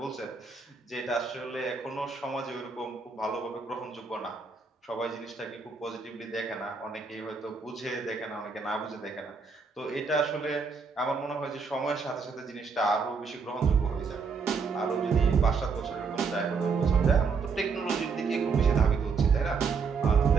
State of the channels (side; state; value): left; quieter; 5.1 dB